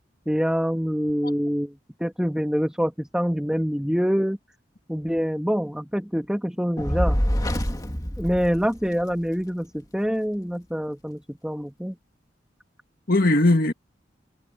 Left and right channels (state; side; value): normal; both; correlation 0.92